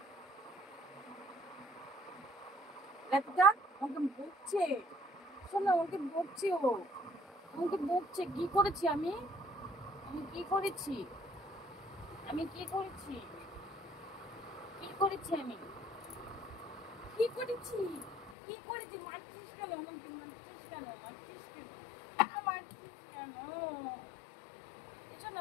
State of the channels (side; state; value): right; drops out; at 18.4 s